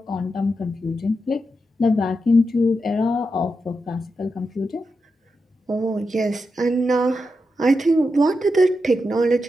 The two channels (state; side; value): normal; both; correlation 0.87